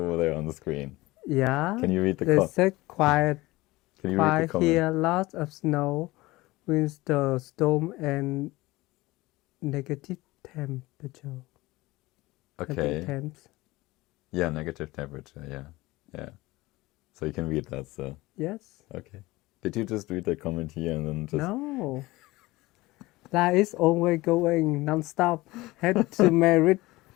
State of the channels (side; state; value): right; quieter; 20.0 dB